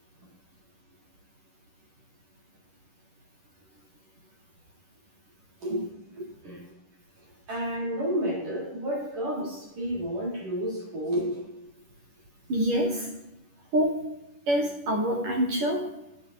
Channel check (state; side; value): late; left; 10 ms